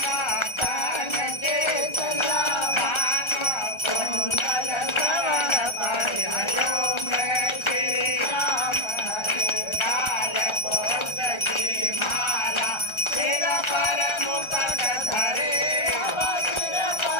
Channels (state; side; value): late; right; 1.3 ms